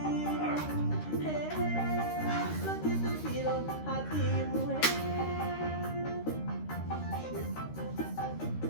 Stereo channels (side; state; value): right; late; 13 ms